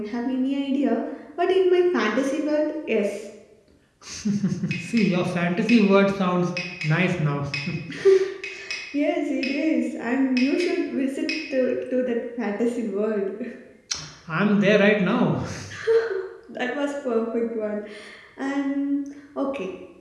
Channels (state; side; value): identical; both; correlation 1.00